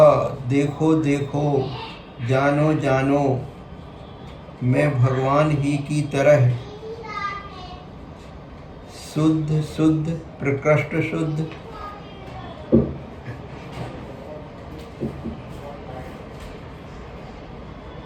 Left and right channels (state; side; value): identical; both; correlation 1.00